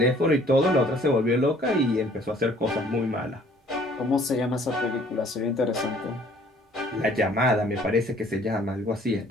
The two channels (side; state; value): both; normal; correlation 0.57